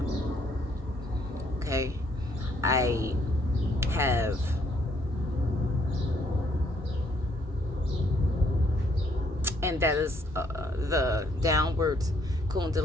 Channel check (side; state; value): both; normal; correlation 0.68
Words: Okay, I have and that is the downward